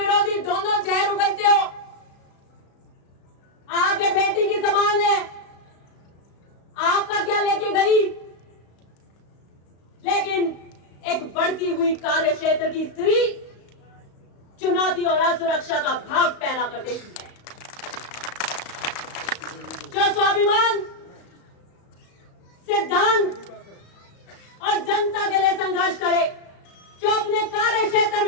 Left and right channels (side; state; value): right; late; 35 ms